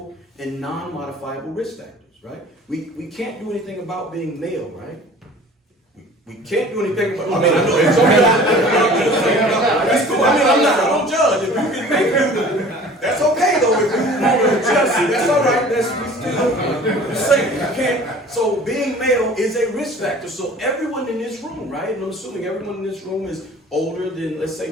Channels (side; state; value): both; normal; correlation 0.46